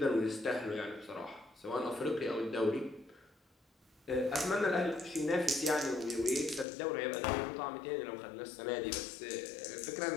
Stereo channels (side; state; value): right; drops out; at 6.7 s